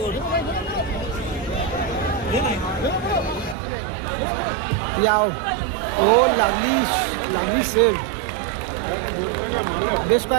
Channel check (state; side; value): drops out; left; at 3.6 s